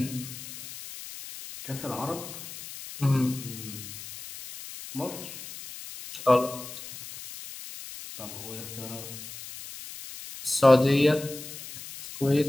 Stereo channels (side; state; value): left; noise; hiss, 12 dB below the sound